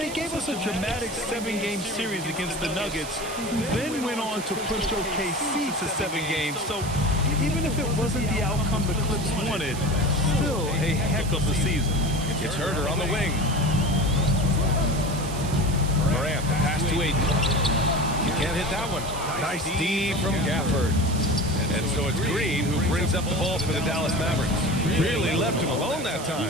gave us a dramatic 7-game series against the Nuggets, who then went on to push OKC to 7 games. So even if it wasn't the outcome the Clips wanted, still a heck of a season. It's Herder on the wing. Morant, the pass to Aiden. You can't hit that one. Nice D from Gafford. And so it's Green who brings up the ball for the Dallas Mavericks. Really left him alone that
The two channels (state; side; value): noise; right; hiss, 11 dB below the sound